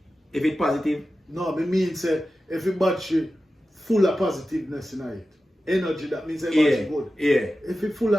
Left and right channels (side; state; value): both; normal; correlation 0.93